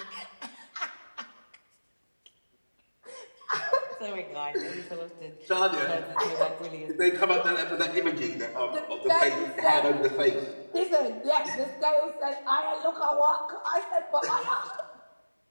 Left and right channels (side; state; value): both; inverted; correlation -1.00